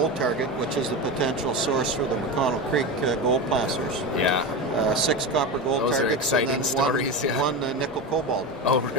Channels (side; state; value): both; normal; correlation 0.21